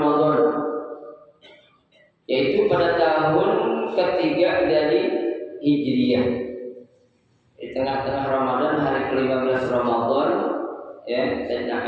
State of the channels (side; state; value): both; identical; correlation 1.00